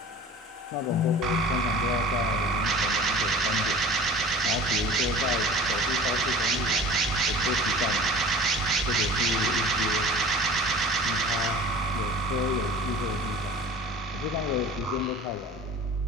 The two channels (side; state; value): both; normal; correlation 0.41